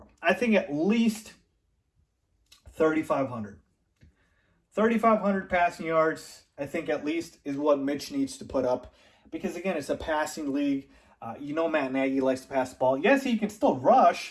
I think at least 3,500. 3,500 passing yards, I think at least, is what Mitch needs to put up. Because, again, it's a passing league. Matt Nagy likes to pass the ball. Yes, he can still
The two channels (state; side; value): identical; both; correlation 1.00